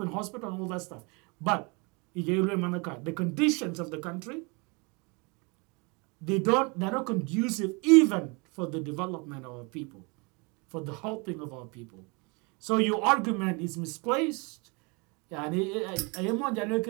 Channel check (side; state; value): left; quieter; 30.3 dB